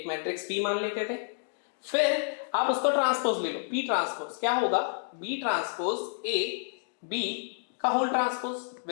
मैट्रिक्स पी मान लेते थे, फिर आप उसको ट्रांसपोज ले लो, पी ट्रांसपोज क्या होगा, बी ट्रांसपोज ए बी का whole transpose,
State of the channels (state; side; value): silent; right; digital silence